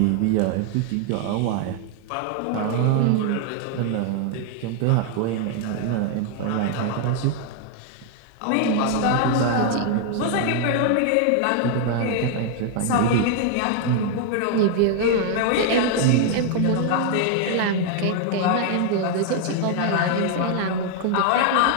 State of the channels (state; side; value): different; both; correlation 0.00